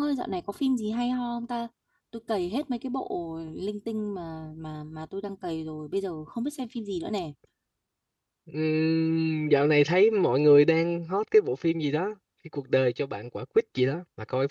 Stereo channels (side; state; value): both; identical; correlation 1.00